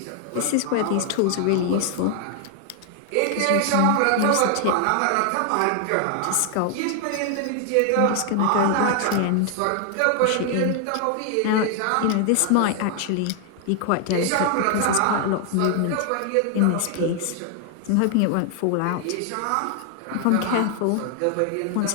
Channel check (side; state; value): both; different; correlation 0.00